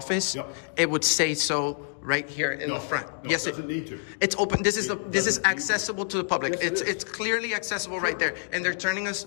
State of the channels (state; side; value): silent; right; digital silence